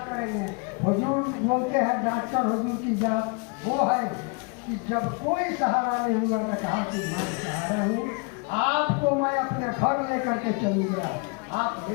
करेंगे। हुजूर बोलते हैं डॉक्टर हुजूर की जात वो है कि जब कोई सहारा नहीं हुआ तो कहा कि मैं सहारा हूँ, आपको मैं अपने घर लेकर के चलूँगा, आप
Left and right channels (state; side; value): quieter; right; 33.4 dB